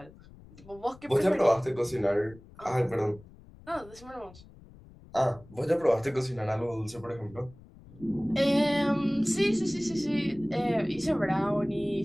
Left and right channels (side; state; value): left; noise; rumble, 22 dB below the sound